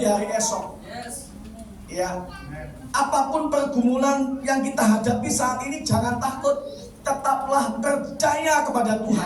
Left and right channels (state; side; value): identical; both; correlation 1.00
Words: hari esok. Yes. Ya, apapun pergumulan yang kita hadapi saat ini, jangan takut, tetaplah percaya kepada